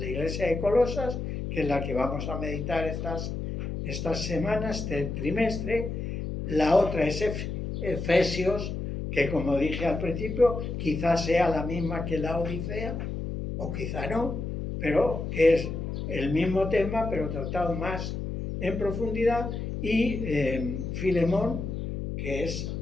iglesia de Colosas, que es la que vamos a meditar estas semanas, este trimestre. La otra es Efesios, que como dije al principio, quizás sea la misma que la Odisea, o quizá no, pero que es el mismo tema, pero tratado más en profundidad. Y Filemón, que es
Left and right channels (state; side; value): noise; left; hum, 4 dB below the sound